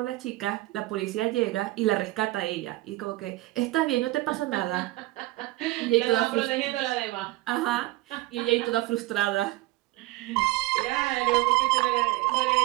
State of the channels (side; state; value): left; quieter; 18.8 dB